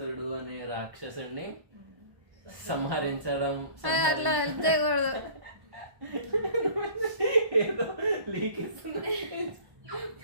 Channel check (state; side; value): late; left; 1.1 ms